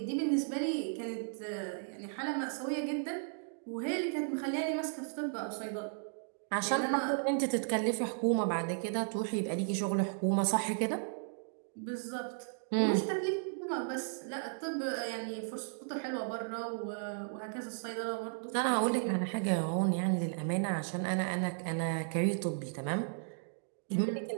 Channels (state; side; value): silent; left; digital silence